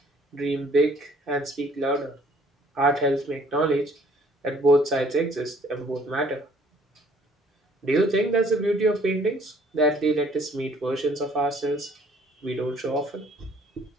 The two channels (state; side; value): normal; both; correlation 0.59